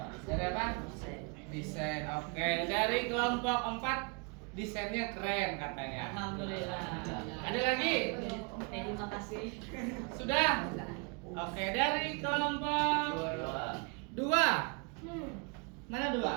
Dari apa? Desain. Oke. Dari kelompok 4 desainnya keren katanya. Alhamdulillah. Ada lagi? Terima kasih. Sudah? Oke. Dari kelompok 2. Mana 2?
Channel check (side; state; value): left; quieter; 32.8 dB